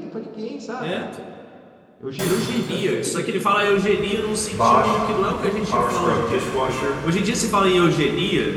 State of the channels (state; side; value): identical; both; correlation 1.00